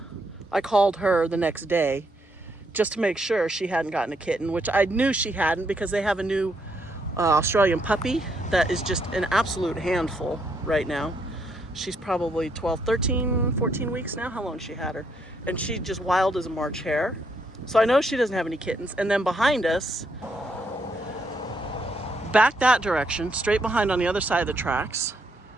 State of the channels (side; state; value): both; normal; correlation 0.75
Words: I called her the next day just to make sure she hadn't gotten a kitten, which I knew she hadn't because they have a new Australian puppy that is just an absolute handful right now. She's probably 12, 13, 14 weeks now. How long she had her? And she's just wild as a March hare. So I know she doesn't have any kittens. And then behind us, back that direction, straight behind on the other side of the tracks,